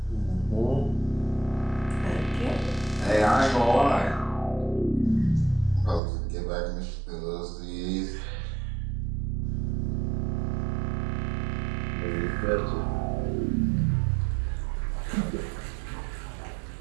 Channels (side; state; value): left; drops out; at 6.0 s